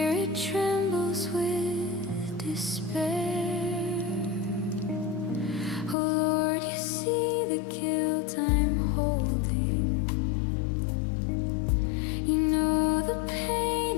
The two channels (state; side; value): drops out; right; at 6.0 s